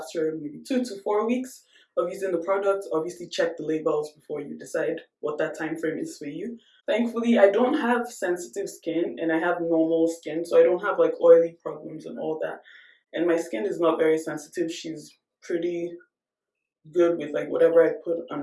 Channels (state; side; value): identical; both; correlation 1.00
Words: maybe 2 to 4 weeks of using the product, obviously check the labels before you decide what that time frame is for you. Thankfully, I don't have sensitive skin and I have normal skin, so I don't have like oily problems and all that. And my skin is not very sensitive. She's pretty good with like whatever I put